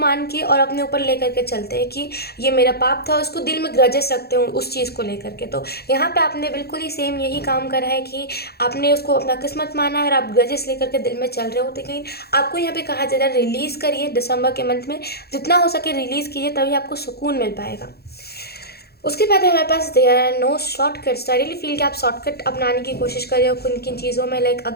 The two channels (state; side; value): late; right; 0.46 ms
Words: के और अपने ऊपर लेकर के चलते हैं कि ये मेरा पाप था, उसको दिल में ग्रजेस रखते हो उस चीज़ को लेकर के। तो यहाँ पे आपने बिल्कुल ही सेम यही काम करा है कि आपने उसको अपना किस्मत माना है और आप ग्रजेस लेकर के दिल में चल रहे हो। लेकिन आपको यहाँ पे कहा जा रहा है रिलीज़ करिए, दिसंबर के मंथ में जितना हो सके रिलीज़ कीजिए, तभी आपको सुकून मिल पाएगा। उसके बाद हमारे पास there are no shortcuts. I really feel कि आप शॉर्टकट अपनाने की कोशिश करिए और किन किन चीज़ों में लाइक